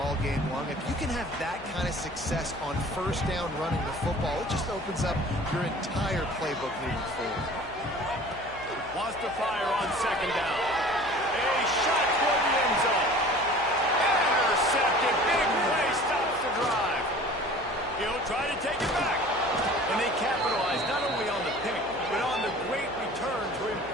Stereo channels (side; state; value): left; noise; hum, 20 dB below the sound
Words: game long. If you can have that kind of success on first down running the football, it just opens up your entire playbook moving forward. Wants to fire on second down.